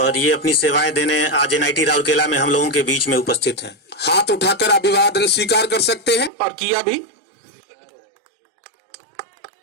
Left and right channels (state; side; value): drops out; left; at 6.3 s